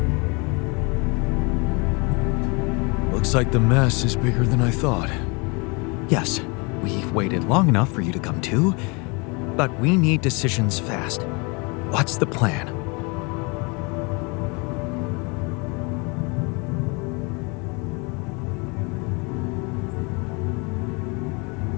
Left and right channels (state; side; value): quieter; right; 29.9 dB